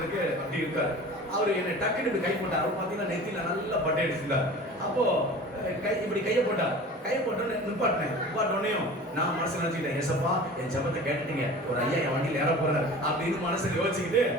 அப்படி இருக்கார். அவர் என்னை டக்குன்னு கை போட்டார். அவர் பார்த்தீங்கன்னா நெத்தியில நல்லா பட்டை அடிச்சிருந்தார். அப்போ இப்படி கையை போட்டார். கையை போட்டோன்னு நிப்பாட்டினோடனையும் நான் மனசு நினைச்சுக்கிட்டேன், ஏசப்பா என் ஜெபத்தை கேட்டுட்டீங்க, ஒரு ஐயா என் வண்டியில் ஏற போறாரு அப்படின்னு மனசுல யோசிச்சுக்கிட்டு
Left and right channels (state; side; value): normal; both; correlation 0.39